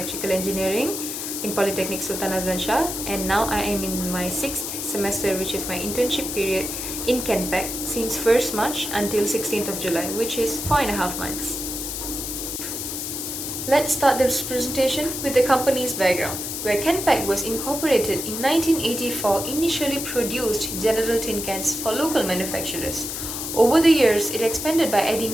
Engineering in Polytechnic Sultan Azlan Shah, and now I am in my 6th semester, which is my internship period in Kenpack since 1st March until 16th of July, which is 4.5 months. Let's start this presentation with the company's background, where Kenpack was incorporated in 1984, initially produced general tin cans for local manufacturers. Over the years, it expanded by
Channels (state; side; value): noise; left; hiss, 5 dB below the sound